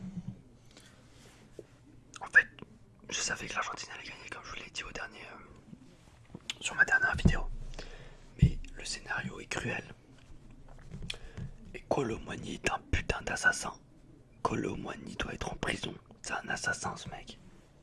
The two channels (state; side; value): identical; both; correlation 1.00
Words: En fait, je savais que l'Argentine allait gagner, comme je vous l'ai dit sur ma dernière vidéo. Mais le scénario est cruel. Et Kolo Muani est un putain d'assassin. Kolo Muani doit être en prison. C'est un assassin, ce mec.